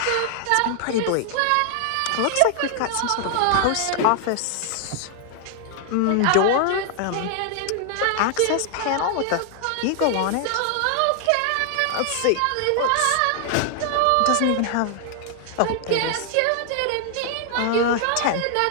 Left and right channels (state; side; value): different; both; correlation 0.00